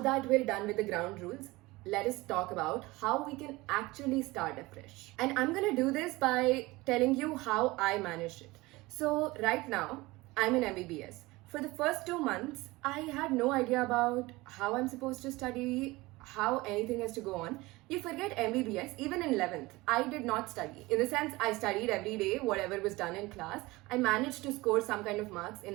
we're done with the ground rules, let us talk about how we can actually start afresh. And I'm gonna do this by telling you how I managed it. So right now, I'm in MBBS. For the first 2 months, I had no idea about how I'm supposed to study, how anything has to go on. You forget MBBS, even in 11th, I did not study. In the sense, I studied every day, whatever was done in class. I managed to score some kind of marks in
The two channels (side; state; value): left; quieter; 21.1 dB